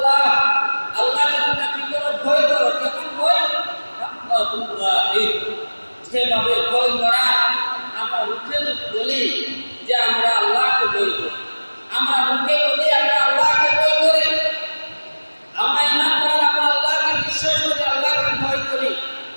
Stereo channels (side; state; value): both; inverted; correlation -1.00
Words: আল্লাহকে তোমরা কি করো? ভয় করো। কেমন ভয়? হাক্কা তুকাতিহ, যেভাবে ভয় করা আমরা মুখে বলি যে আমরা আল্লাহকে ভয় করি, আমরা মুখে বলি আমরা আল্লাহকে ভয় করি, আমরা ইমানদার, আমরা আল্লাহকে বিশ্বাস করি, আল্লাহকে ভয় করি,